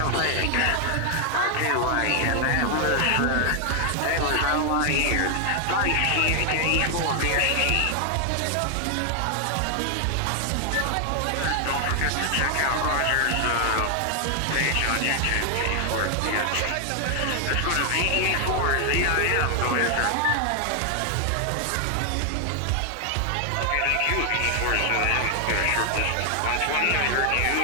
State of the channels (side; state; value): both; different; correlation 0.00